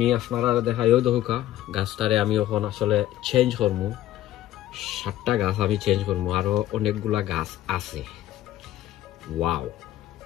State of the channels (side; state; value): right; quieter; 13.7 dB